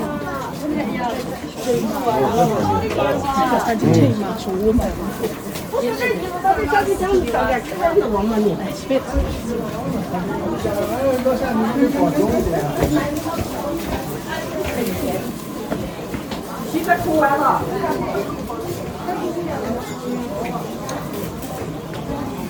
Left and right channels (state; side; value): identical; both; correlation 1.00